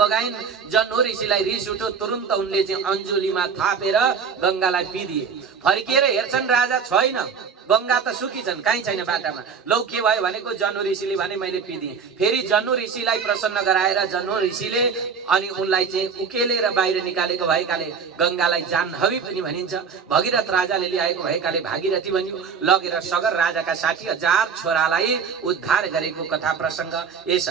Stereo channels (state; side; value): quieter; left; 6.1 dB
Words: जन्हु ऋषिलाई रिस उठ्यो, तुरुन्त उनले चाहिँ अञ्जुलीमा थापेर गंगालाई पिदिए। फर्किएर हेर्छन् राजा छैन, गंगा त सुकी छन्, कहीँ छैन बाटामा। लौ के भयो भनेको जन्हु ऋषिले भने मैले पिदिएँ। फेरि जन्हु ऋषिलाई प्रसन्न गराएर जन्हु ऋषिले अनि उनलाई चाहिँ उकेलेर बाहिर निकालेको भएकाले गंगालाई जाह्नवी पनि भनिन्छ। भगीरथ राजाले ल्याएको भएकाले भागीरथी भनियो। लगेर सगर राजाका 60,000 छोरालाई उद्धार गरेको कथा प्रसंग यस